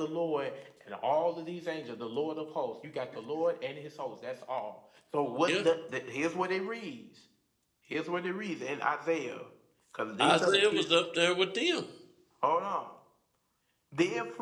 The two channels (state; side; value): identical; both; correlation 1.00